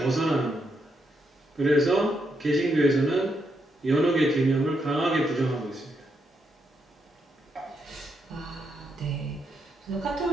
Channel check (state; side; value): normal; both; correlation 0.80